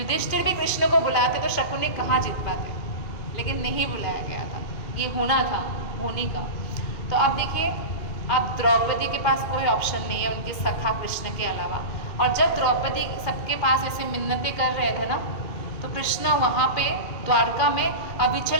भी कृष्ण को बुलाते तो शकुनी कहाँ जीत पाते, लेकिन नहीं बुलाया गया था, ये होना था होनी का। तो अब देखिए, अब द्रौपदी के पास कोई ऑप्शन नहीं है उनके सखा कृष्ण के अलावा। और जब द्रौपदी सबके पास ऐसे मिन्नतें कर रहे थे ना, तो कृष्ण वहाँ पे द्वारका में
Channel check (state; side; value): late; right; 2.5 ms